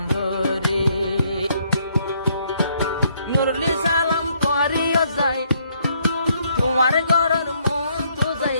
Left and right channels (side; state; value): both; inverted; correlation -0.70